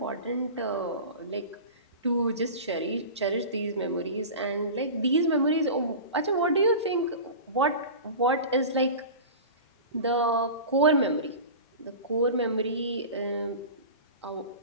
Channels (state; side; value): inverted; both; correlation -0.33